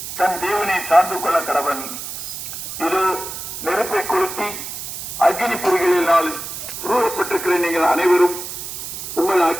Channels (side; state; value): right; noise; hiss, 8 dB below the sound